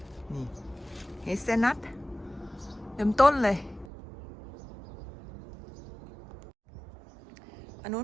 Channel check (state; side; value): drops out; left; at 3.9 s